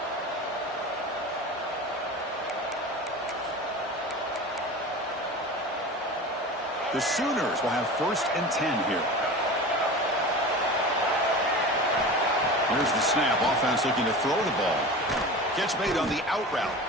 The Sooners will have 1st and 10 here. Here's the snap. Offense looking to throw the ball. Catch made on the out route.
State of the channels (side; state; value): both; normal; correlation 0.33